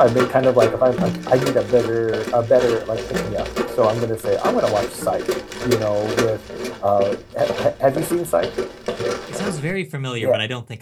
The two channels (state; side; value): identical; both; correlation 1.00